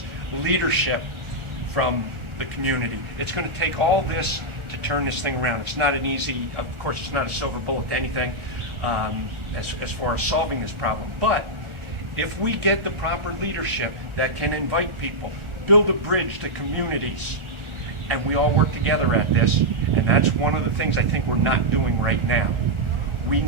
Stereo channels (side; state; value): left; late; 1.4 ms